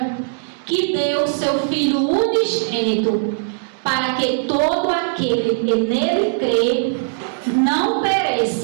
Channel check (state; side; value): silent; left; 66 dB below the other